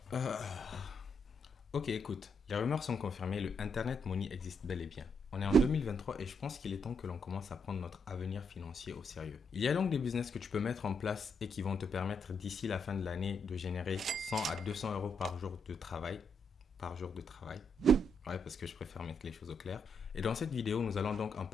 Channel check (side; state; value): both; normal; correlation 0.77